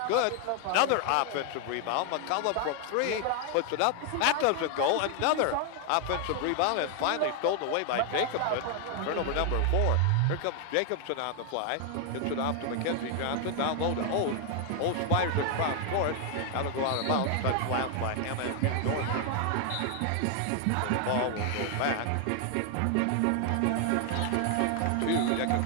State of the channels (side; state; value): both; different; correlation 0.00